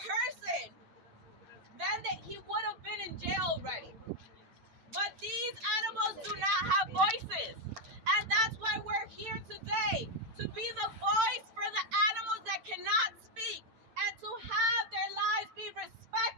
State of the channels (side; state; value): left; late; 9.0 ms